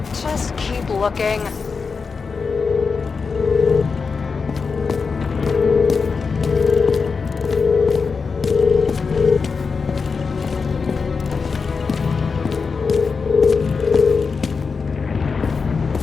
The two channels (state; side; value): quieter; right; 5.0 dB